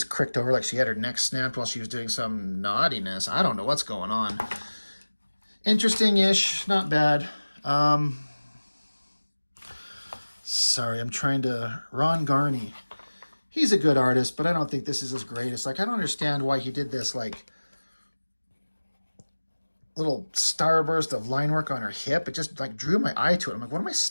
cricked over like she had her neck snapped while she was doing some naughtiness. I don't know what's going on. Interesting-ish, not bad. Sorry, I'm trying to... Ron Garney. He's a good artist, but I don't think this is his greatest. Like, I don't understand why he did this, like, little starburst of line work on her hip. It just, like, drew my eye to it. I'm like, what am I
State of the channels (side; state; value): both; inverted; correlation -1.00